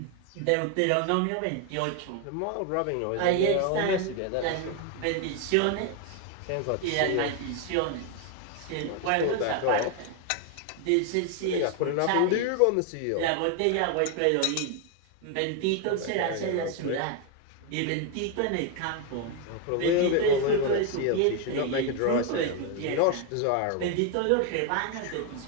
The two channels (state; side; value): different; both; correlation 0.01